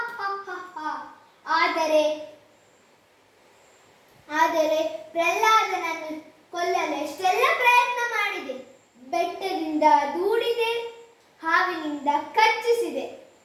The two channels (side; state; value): both; identical; correlation 1.00